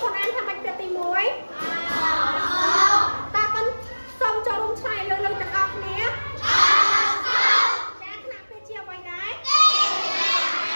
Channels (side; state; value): both; inverted; correlation -1.00